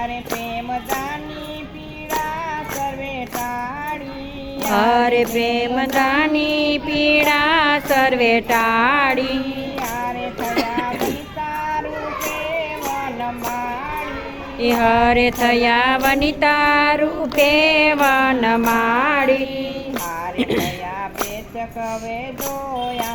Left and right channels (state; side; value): identical; both; correlation 1.00